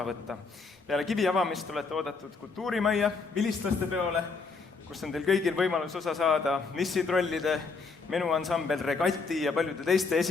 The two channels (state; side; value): quieter; right; 4.4 dB